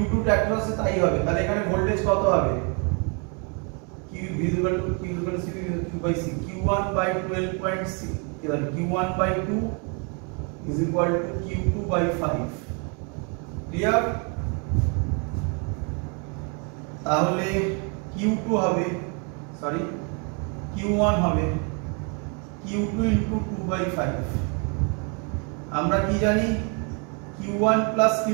এর অ্যাক্রসে তাই হবে। তাহলে এখানে ভোল্টেজ কত হবে? Q visible to Q equal to Q/C, Q1/12.6, এবার Q1/2 is equal to Q2/5। Clear? তাহলে Q2 হবে, সরি Q1 হবে Q2 into 2/5। আমরা কি জানি? Q1 plus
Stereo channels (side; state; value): left; quieter; 36.0 dB